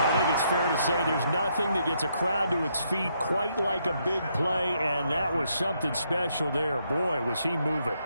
I think it's fair to say there's nothing that gets a crowd to its feet quite like a big play, and that was something special there. Boy, was he moving.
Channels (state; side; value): inverted; both; correlation -0.75